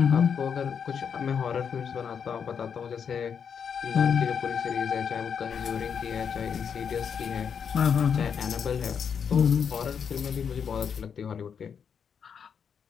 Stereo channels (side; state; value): right; quieter; 7.1 dB